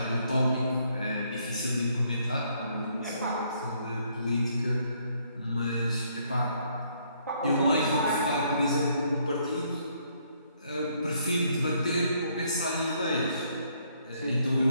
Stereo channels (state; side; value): inverted; both; correlation -0.69